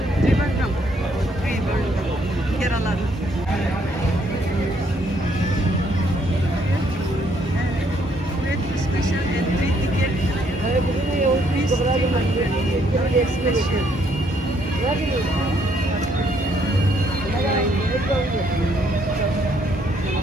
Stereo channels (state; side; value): normal; both; correlation 0.69